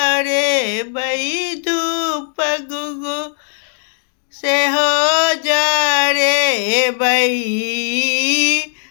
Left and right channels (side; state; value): right; silent; digital silence